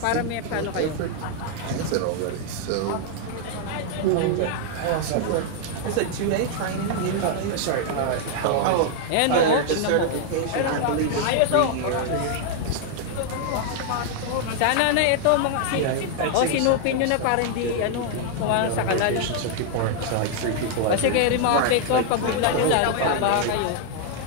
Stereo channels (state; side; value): different; both; correlation 0.00